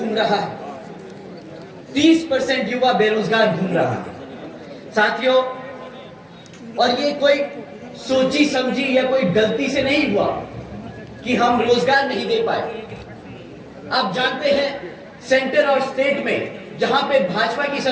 रहा है। 30% युवा बेरोजगार घूम रहा है साथियों। और ये कोई सोची समझी या कोई गलती से नहीं हुआ कि हम रोजगार नहीं दे पाए। आप जानते हैं सेंटर और स्टेट में जहां पे भाजपा की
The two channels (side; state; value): both; identical; correlation 1.00